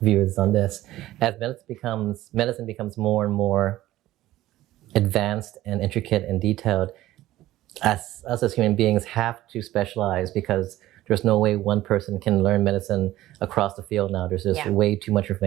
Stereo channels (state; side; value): quieter; left; 15.5 dB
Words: view is on this. As medicine becomes more and more advanced and intricate and detailed, us as human beings have to specialize, because there's no way one person can learn medicine across the field now. There's just way too much